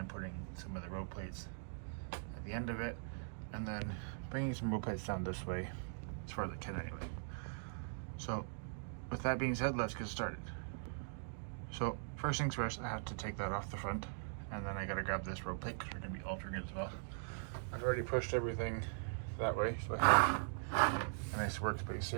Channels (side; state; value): left; silent; digital silence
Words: putting some of the road plates at the end of it, and then bringing some road plates down this way as far as I can anyway. So with that being said, let's get started. So first things first, I have to take that off the front, and then I got to grab this road plate because we're going to be altering it as well. I've already pushed everything that way, so I have a nice workspace